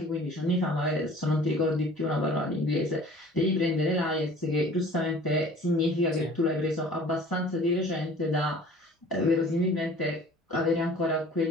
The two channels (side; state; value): both; normal; correlation 0.48